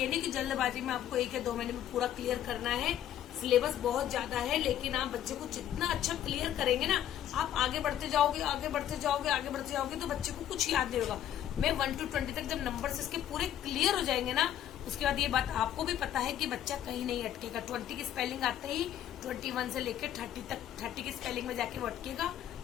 नहीं कि जल्दबाजी में आपको 1 या 2 महीने में पूरा क्लियर करना है। सिलेबस बहुत ज्यादा है, लेकिन आप बच्चे को जितना अच्छा क्लियर करेंगे ना, आप आगे बढ़ते जाओगे, आगे बढ़ते जाओगे, आगे बढ़ते जाओगे, तो बच्चे को कुछ याद नहीं होगा। मैं 1 to 20 तक जब नंबर इसके पूरे क्लियर हो जाएंगे ना, उसके बाद ये बात आपको भी पता है कि बच्चा कहीं नहीं अटकेगा। 20 की स्पेलिंग आते ही 21 से लेकर 30 तक 30 की स्पेलिंग में जाके वो अटकेगा,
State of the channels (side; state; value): right; quieter; 11.1 dB